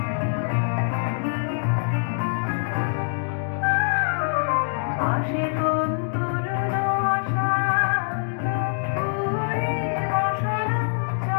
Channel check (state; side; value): silent; right; digital silence